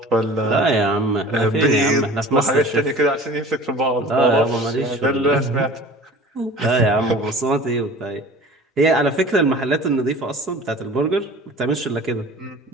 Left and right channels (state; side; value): normal; both; correlation 0.42